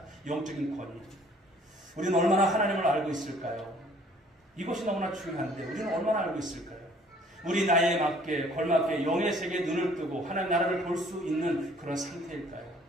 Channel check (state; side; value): normal; both; correlation 0.57